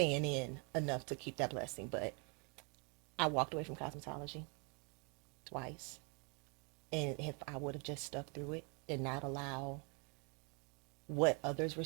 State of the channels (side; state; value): left; quieter; 33.7 dB